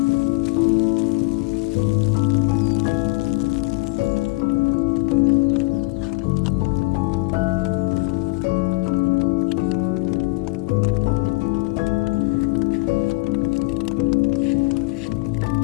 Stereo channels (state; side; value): quieter; right; 24.1 dB